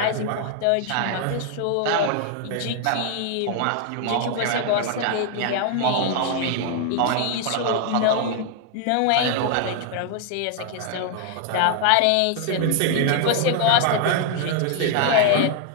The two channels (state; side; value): different; both; correlation 0.00